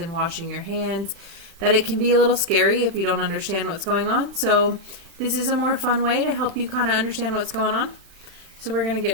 washing your hands that it can be a little scary if you don't understand what's going on. So this is a more fun way to help you kind of understand what's going on. So we're going to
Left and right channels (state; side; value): late; left; 36 ms